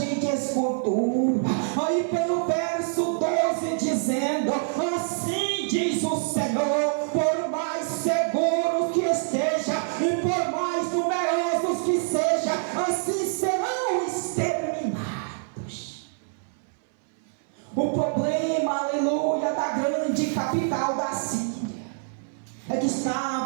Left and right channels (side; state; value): left; silent; 60 dB below the other